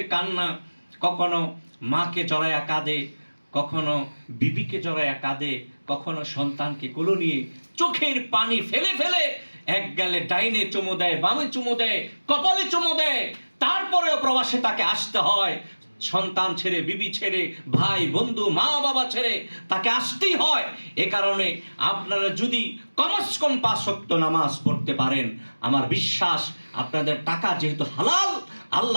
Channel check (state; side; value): inverted; both; correlation -1.00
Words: কান্না, কখনো মাকে জড়ায়া কাঁদে, কখনো বিবিকে জড়ায়া কাঁদে, কখনো সন্তানকে কোলে নিয়ে চোখের পানি ফেলে ফেলে এক গালে ডাইনে চুমু দেয়, বামে চুমু দেয়, কপালে চুমু দেয়, তারপরেও প্রবাসে তাকে আসতে হয়। সন্তান ছেড়ে, বিবি ছেড়ে, ভাই বন্ধু মা বাবা ছেড়ে তাকে আসতেই হয়। এ কারণে আপনারা যদি কমস কম 5 ওয়াক্ত নামাজ পড়তে পারেন, আমার বিশ্বাস আপনাদের টাকা যেহেতু হালাল,